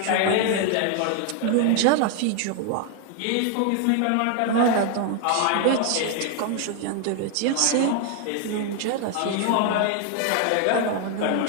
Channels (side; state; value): both; different; correlation 0.00